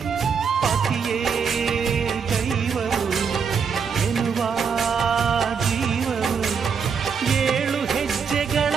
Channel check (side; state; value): left; quieter; 6.3 dB